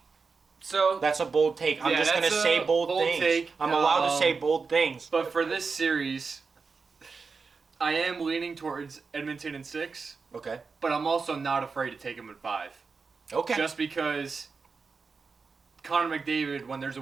So that's a bold take. I'm just going to say bold things. Take. I'm allowed to say bold things. But for this series, I am leaning towards Edmonton in 6. Okay. But I'm also not afraid to take him in 5. Okay. Just because Connor McDavid, when there's a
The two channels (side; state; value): left; quieter; 4.8 dB